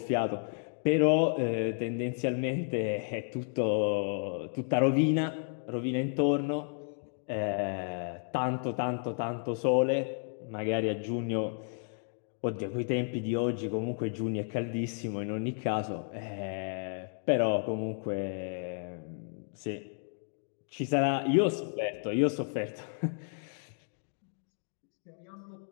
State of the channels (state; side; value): silent; right; 56 dB below the other